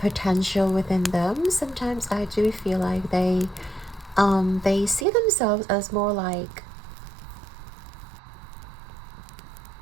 within them. Sometimes I do feel like they see themselves as more like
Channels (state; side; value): drops out; left; at 5.1 s